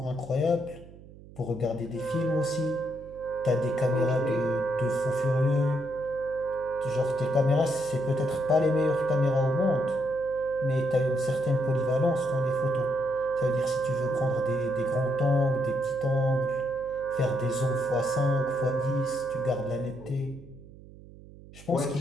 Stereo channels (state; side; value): noise; right; hum, 19 dB below the sound